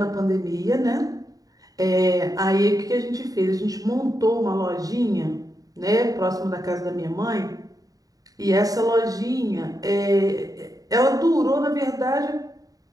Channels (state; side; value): late; left; 0.18 ms